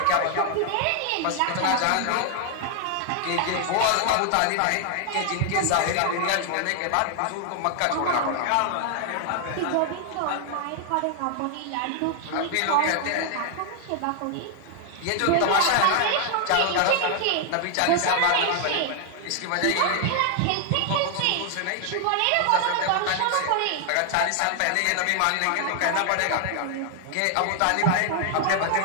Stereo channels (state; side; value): different; both; correlation 0.00